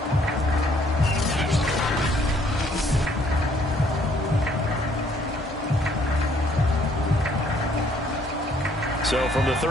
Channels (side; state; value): both; normal; correlation 0.64